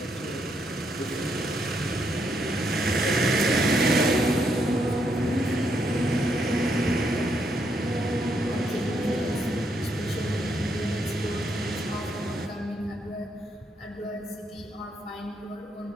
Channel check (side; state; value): both; normal; correlation 0.76